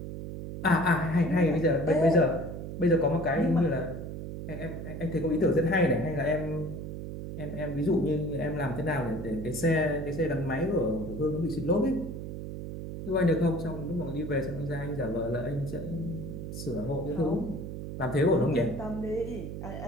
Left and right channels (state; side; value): noise; right; hum, 7 dB below the sound